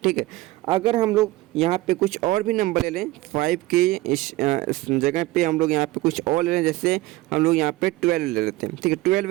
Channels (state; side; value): quieter; left; 18.8 dB